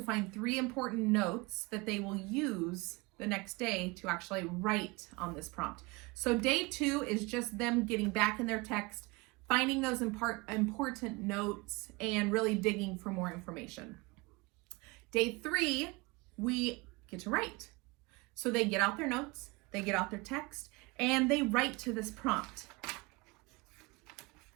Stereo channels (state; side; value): quieter; left; 25.2 dB